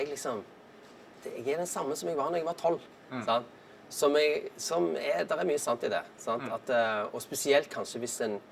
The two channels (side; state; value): both; identical; correlation 1.00